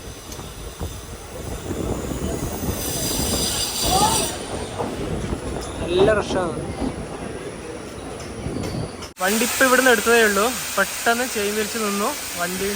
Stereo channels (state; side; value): identical; both; correlation 1.00